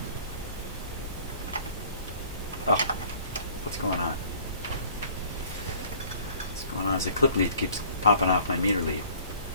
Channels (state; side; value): inverted; both; correlation -0.53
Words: Oh, what's going on? What's going on is the clip lead keeps popping off my meter lead.